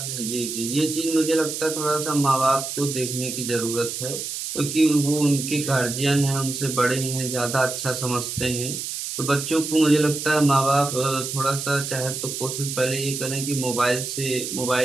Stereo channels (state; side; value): noise; right; hiss, 5 dB below the sound